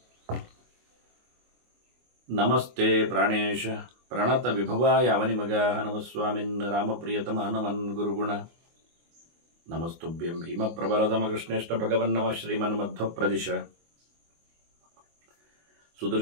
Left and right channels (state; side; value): late; left; 24 ms